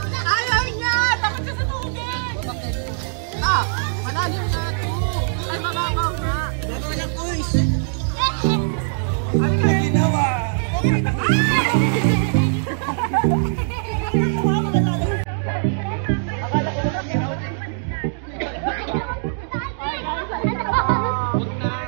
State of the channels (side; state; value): left; silent; digital silence